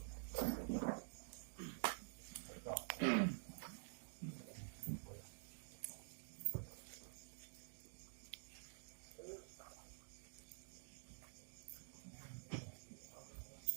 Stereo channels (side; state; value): left; silent; digital silence